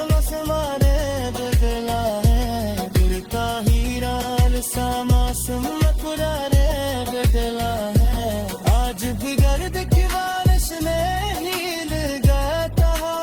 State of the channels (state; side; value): identical; both; correlation 1.00